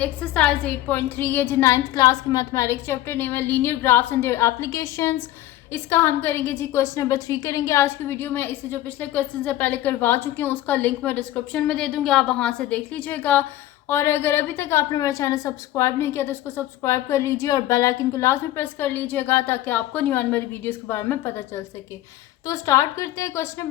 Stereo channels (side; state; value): right; quieter; 14.5 dB